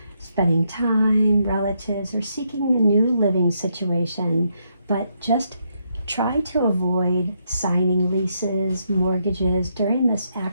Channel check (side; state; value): both; inverted; correlation -0.77